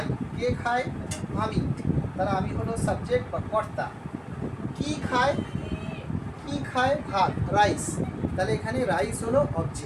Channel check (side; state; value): both; identical; correlation 1.00